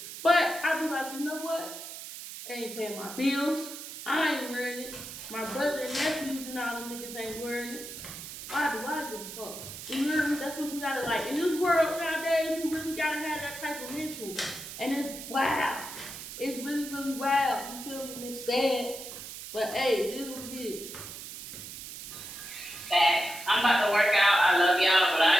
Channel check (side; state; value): right; noise; hiss, 11 dB below the sound